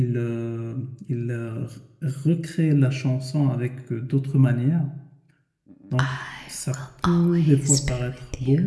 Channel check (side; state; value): both; identical; correlation 1.00